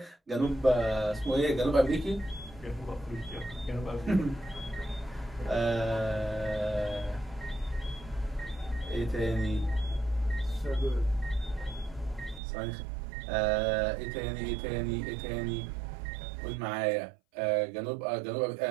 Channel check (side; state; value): left; drops out; at 12.4 s